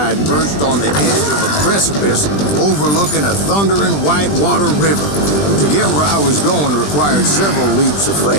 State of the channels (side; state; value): right; late; 20 ms